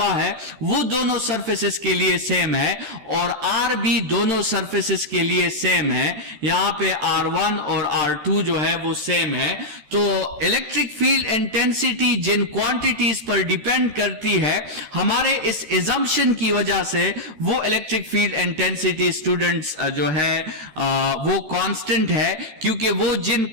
है वो दोनों सरफेसेस के लिए सेम है, और R भी दोनों सरफेसेस के लिए सेम है। यहां पे R1 और R2 जो है वो सेम है। तो इलेक्ट्रिक फील्ड इंटेंसिटी जिन क्वांटिटीज पर डिपेंड करती है, हमारे इस एजम्पशन की वजह से वो इलेक्ट्रिक फील्ड इंटेंसिटी स्टूडेंट्स जो है वो कांस्टेंट है, क्योंकि वो जिन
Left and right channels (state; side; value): late; left; 13 ms